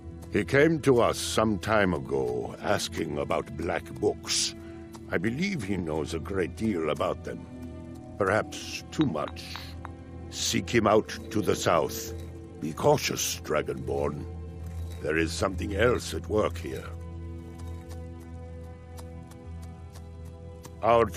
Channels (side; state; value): both; identical; correlation 1.00